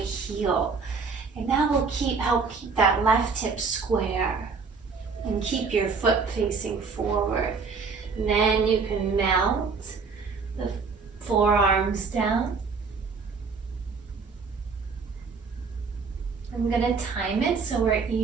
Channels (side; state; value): left; quieter; 5.0 dB